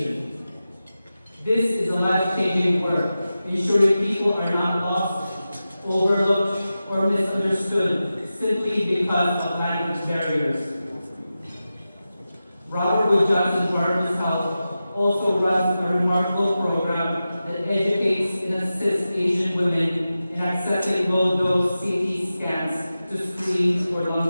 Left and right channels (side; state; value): both; inverted; correlation -0.93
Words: This is a life-changing work, ensuring people are not lost, overlooked, or misunderstood simply because of language barriers. Robert Wood Johnson Barnabas Health also runs a remarkable program that educates and assists Asian women in accessing low-dose CT scans to screen for